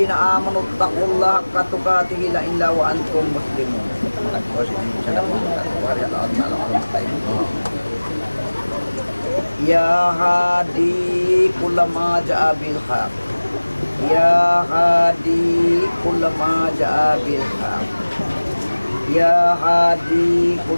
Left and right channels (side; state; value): both; inverted; correlation -1.00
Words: آمنوا اتقوا الله حق تقاته إلا وأنتم مسلمون يا هادي كل ما جاء بالحق يا هادي كل ما جاء بالحق يا هادي